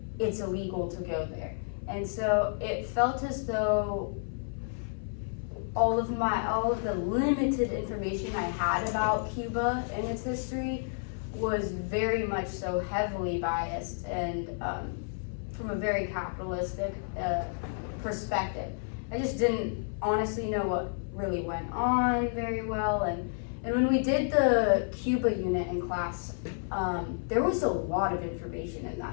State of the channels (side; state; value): right; silent; 57 dB below the other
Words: it's illegal to go there. And so it felt as though all of the limited information I had about Cuba and its history was very much so heavily biased and from a very capitalistic perspective. I just didn't honestly know what really went on very well, and when we did the Cuba unit in class, there was a lot of information in